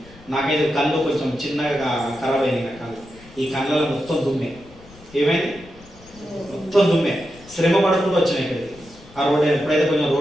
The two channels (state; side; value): noise; left; rumble, 23 dB below the sound